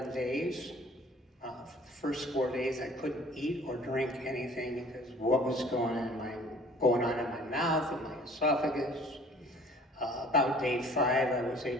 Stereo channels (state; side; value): normal; both; correlation 0.51